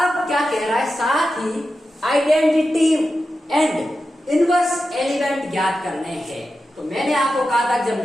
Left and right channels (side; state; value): both; normal; correlation 0.91